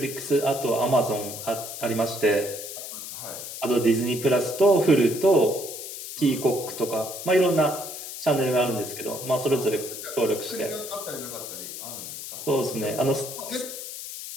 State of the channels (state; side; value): noise; left; hiss, 9 dB below the sound